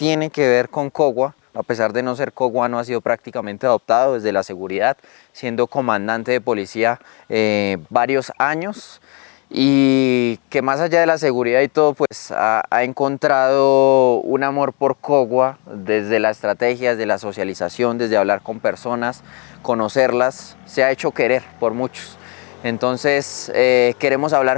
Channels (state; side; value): quieter; right; 32.7 dB